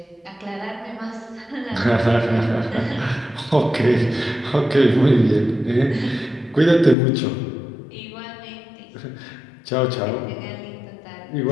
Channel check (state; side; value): drops out; right; at 7.0 s